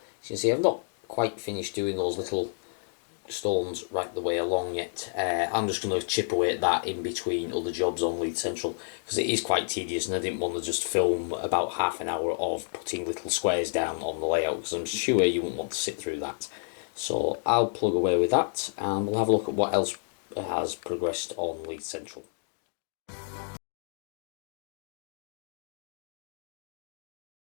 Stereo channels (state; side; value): silent; right; digital silence